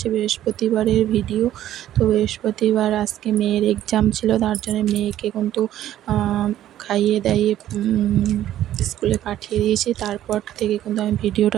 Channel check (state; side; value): quieter; left; 12.4 dB